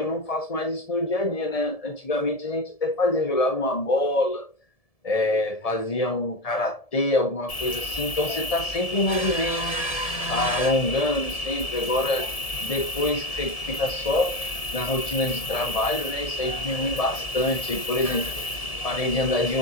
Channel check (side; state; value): right; late; 1.7 ms